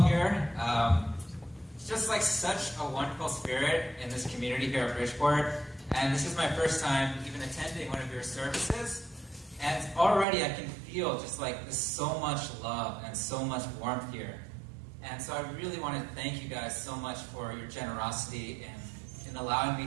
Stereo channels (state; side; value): drops out; left; at 10.2 s